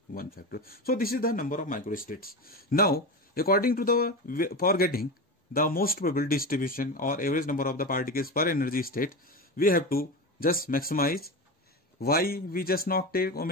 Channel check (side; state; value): both; normal; correlation 0.22